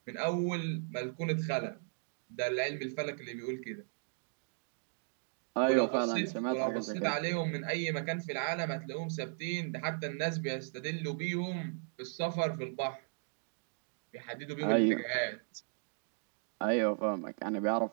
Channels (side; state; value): left; silent; digital silence